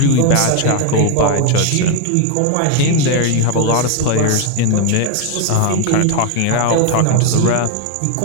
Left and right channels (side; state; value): both; different; correlation 0.01